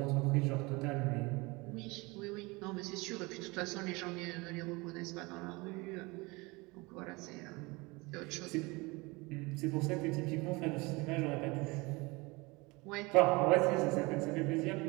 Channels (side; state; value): left; quieter; 24.9 dB